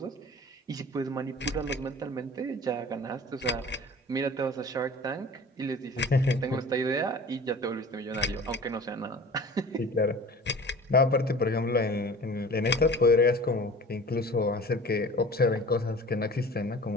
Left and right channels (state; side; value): normal; both; correlation 0.42